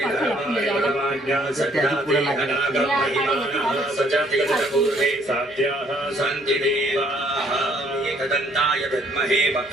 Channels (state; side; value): noise; right; hum, 30 dB below the sound